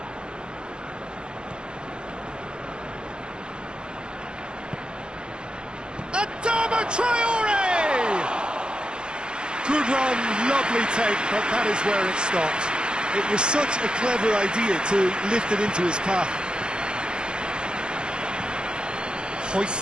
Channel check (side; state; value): left; late; 0.047 ms